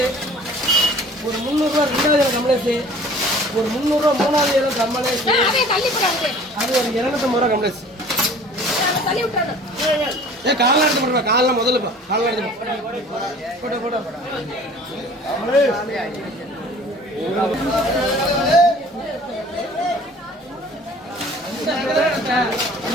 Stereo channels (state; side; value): normal; both; correlation 0.48